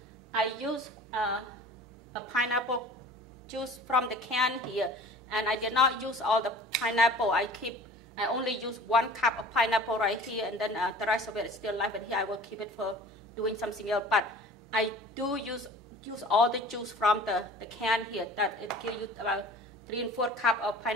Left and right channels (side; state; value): both; normal; correlation 0.44